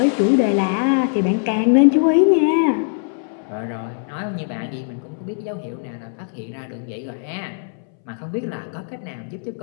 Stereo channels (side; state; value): right; silent; 64 dB below the other